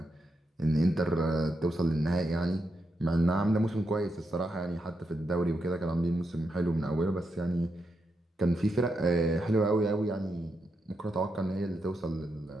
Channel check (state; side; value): normal; both; correlation 0.84